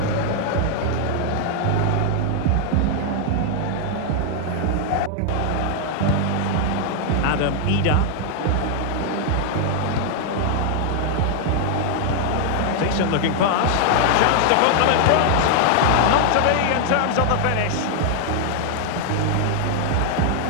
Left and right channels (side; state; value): both; different; correlation 0.00